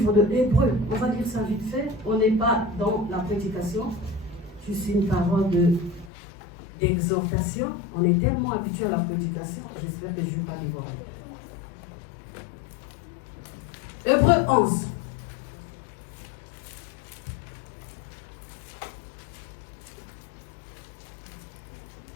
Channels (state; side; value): drops out; right; at 6.1 s